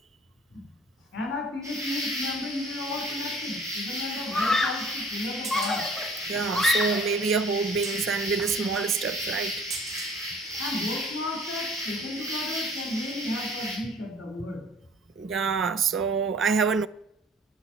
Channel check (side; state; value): both; normal; correlation 0.51